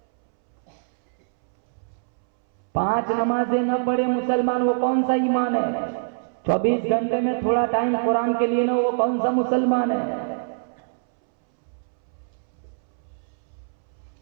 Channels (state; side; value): silent; left; 63 dB below the other